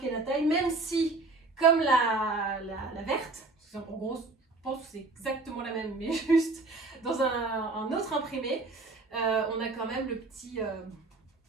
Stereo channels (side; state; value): left; quieter; 3.4 dB